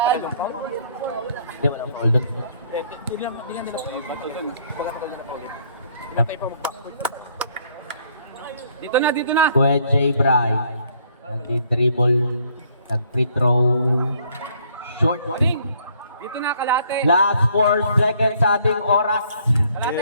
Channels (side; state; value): both; inverted; correlation -0.64